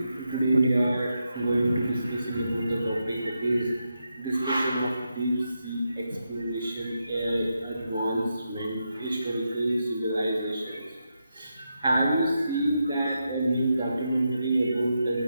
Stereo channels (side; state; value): both; inverted; correlation -0.85